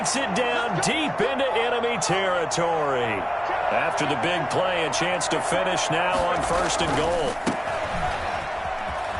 it down deep into enemy territory. After the big play, a chance to finish now on 1st and goal.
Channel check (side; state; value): both; identical; correlation 1.00